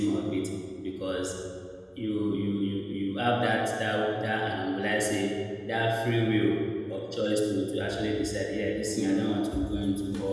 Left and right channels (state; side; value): identical; both; correlation 1.00